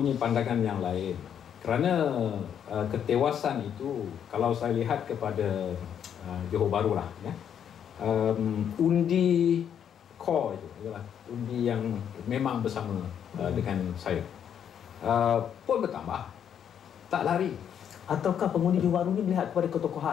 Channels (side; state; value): right; quieter; 8.7 dB